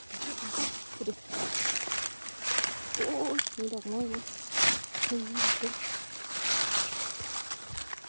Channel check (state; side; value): inverted; both; correlation -1.00